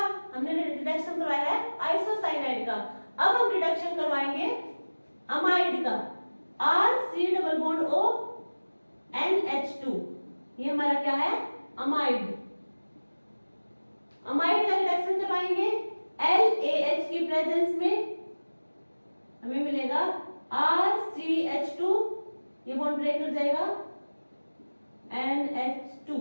हमने रिडक्शन करवाया है आइसोसाइनाइड का। अब हम रिडक्शन करवाएंगे अमाइड का RC∼ONH2, ये हमारा क्या है अमाइड। अमाइड का रिडक्शन करवाएंगे LAH की प्रेजेंस में, हमें मिलेगा RCH2, ये बॉन्ड ब्रेक कर जाएगा NH2,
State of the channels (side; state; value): both; inverted; correlation -1.00